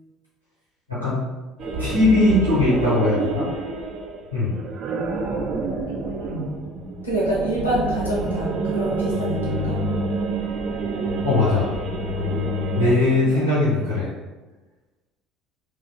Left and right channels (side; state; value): both; normal; correlation 0.44